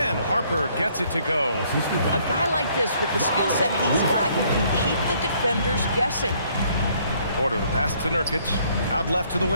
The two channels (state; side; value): inverted; both; correlation -0.65